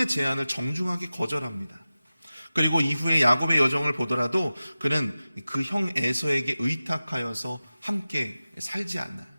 제안을 정중하게 거절합니다. 그리고 이후에 야곱의 여정을 보더라도 그는 그 형 에서에게 의탁하여서 함께 살지 않나요?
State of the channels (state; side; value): inverted; both; correlation -0.95